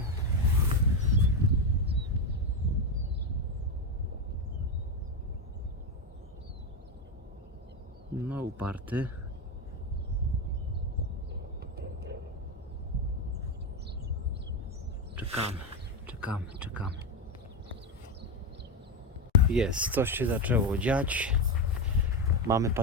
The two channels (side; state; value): both; normal; correlation 0.11